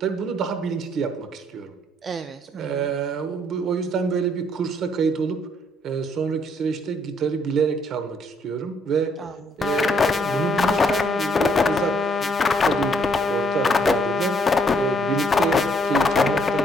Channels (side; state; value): both; normal; correlation 0.67